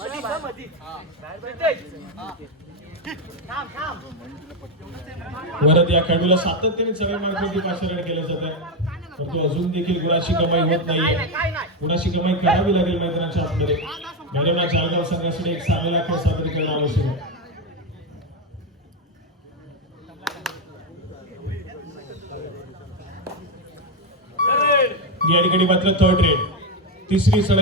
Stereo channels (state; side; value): normal; both; correlation 0.08